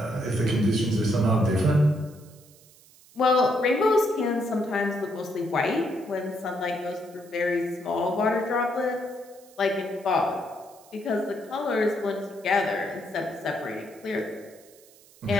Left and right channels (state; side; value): noise; right; hiss, 26 dB below the sound